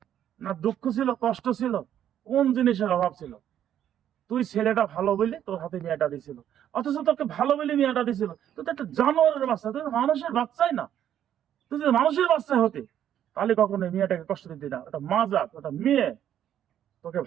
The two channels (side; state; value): left; quieter; 10.5 dB